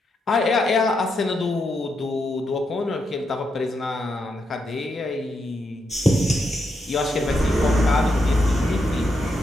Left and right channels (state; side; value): normal; both; correlation 0.82